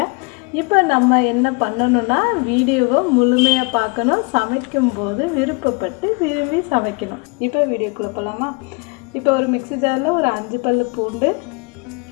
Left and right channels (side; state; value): right; quieter; 31.4 dB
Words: இப்போ நம்ம என்ன பண்ணணும்னா வீடியோவை முழுமையாக பார்க்கணும். சமைக்கும்போது விருப்பப்பட்டு விரும்பி சமைக்கணும். இப்போ வீடியோக்குள்ளே போகலாமா? இப்போ ஒரு மிக்ஸி ஜாரில் ஒரு 5 பல்லு பூண்டு,